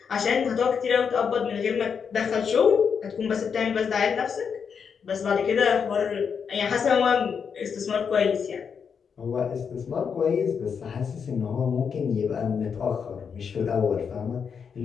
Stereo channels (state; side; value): quieter; right; 6.6 dB